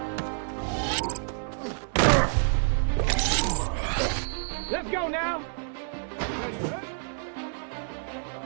Let's go now. Ready?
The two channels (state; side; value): silent; left; digital silence